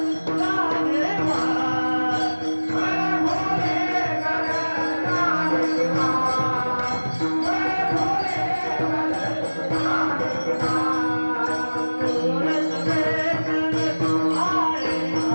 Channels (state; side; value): inverted; both; correlation -1.00